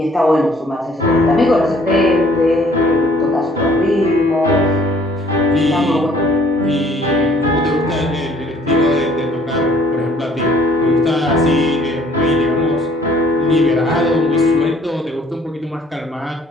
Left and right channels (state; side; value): normal; both; correlation 0.59